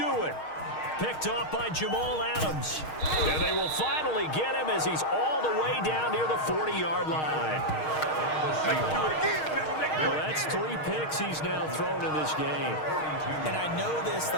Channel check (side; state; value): right; late; 6.4 ms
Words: it. Picked off by Jamal Adams. And they will finally get him as he's all the way down near the 40-yard line. Well, that's 3 picks he's now thrown in this game. And I know this, the